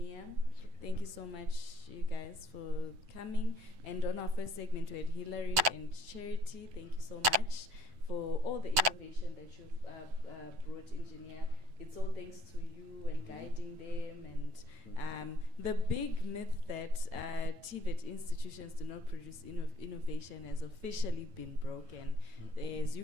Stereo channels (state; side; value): late; left; 9.1 ms